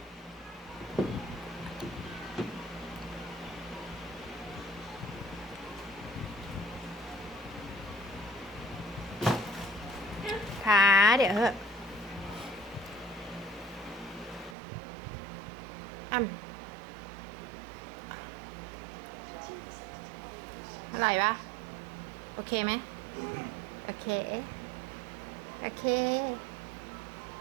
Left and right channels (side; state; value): left; drops out; at 14.6 s